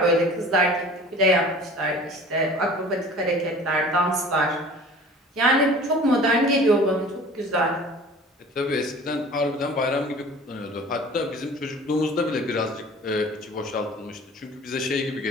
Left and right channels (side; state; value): both; normal; correlation 0.44